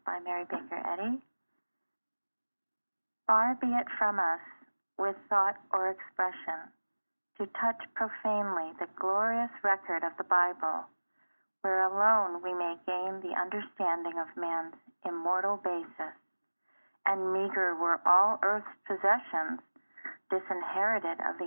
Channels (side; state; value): both; inverted; correlation -1.00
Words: by Mary Baker Eddy. Far be it from us, with thought or expression, to touch profanely the glorious record of the Bible, where alone we may gain the understanding of man's immortal basis, and meager were all earth's possessions, disinherited of